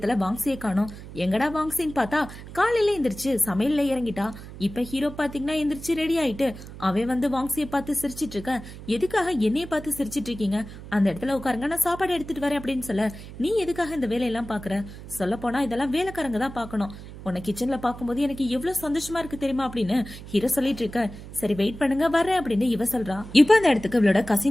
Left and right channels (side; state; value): right; noise; hum, 14 dB below the sound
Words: வாங்ஸியை காணோம். எங்கடா வாங்ஸின்னு பார்த்தா காலையில எந்திரிச்சு சமையல்ல இறங்கிட்டா. இப்ப ஹீரோ பாத்தீங்கன்னா எந்திரிச்சு ரெடி ஆயிட்டு அவன் வந்து வாங்ஸியை பார்த்து சிரிச்சிட்டு இருக்க. எதுக்காக என்னைய பார்த்து சிரிச்சிட்டு இருக்கீங்க? அந்த இடத்துல உட்காருங்க, நான் சாப்பாடு எடுத்துட்டு வரேன் அப்படின்னு சொல்ல, நீ எதுக்காக இந்த வேலையெல்லாம் பாக்குற? சொல்ல போனா இதெல்லாம் வேலைக்காரங்க தான் பாக்கணும். உன்னை கிச்சன்ல பாக்கும்போது எனக்கு எவ்வளவு சந்தோஷமா இருக்கு தெரியுமா அப்படின்னு ஹீரோ சொல்லிட்டு இருக்க. சரி வெயிட் பண்ணுங்க வரேன் அப்படின்னு இவ சொல்றா. இப்ப அந்த இடத்துக்கு இவளோட